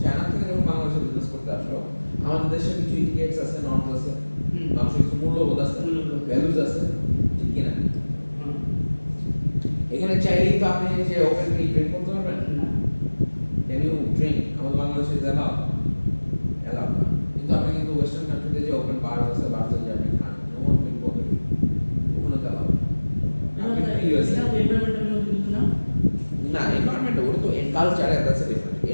চায়না থেকে যখন বাংলাদেশে বিজনেস করতে আসলো, আমাদের দেশে কিছু ইটিকেটস আছে, নর্মস আছে, মানুষের কিছু মূল্যবোধ আছে, ভ্যালুজ আছে, ঠিক কিনা? এখানে চাইলেই তো আপনি যে ওপেনলি ড্রিঙ্ক করতে পারবেন না। Can you drink? আমাদের বাংলাদেশে অ্যালাউ না, কিন্তু আপনি কিন্তু ওয়েস্টার্ন কান্ট্রিতে যে ওপেন বার আছে, বারতে যে আপনি খান, no one will bother you, ওখানে তো অ্যালাউ আপনি ইউএসএ না, এনভায়রনমেন্ট ওটা তো culture, that's a different.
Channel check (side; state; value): both; inverted; correlation -1.00